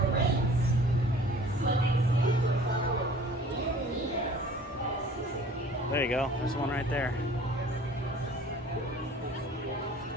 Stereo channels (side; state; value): both; normal; correlation 0.49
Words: There you go. There's one right there.